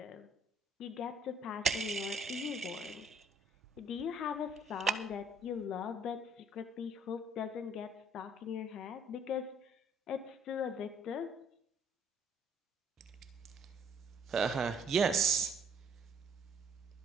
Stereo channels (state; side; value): normal; both; correlation 0.64